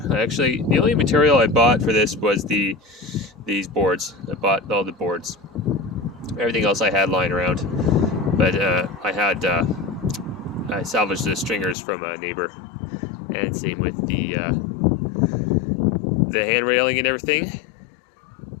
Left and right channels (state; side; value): drops out; right; at 11.8 s